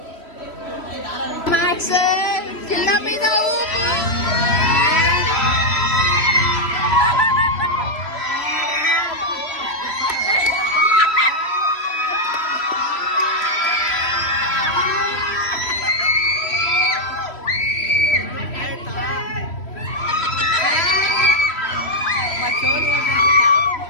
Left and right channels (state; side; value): late; right; 3.1 ms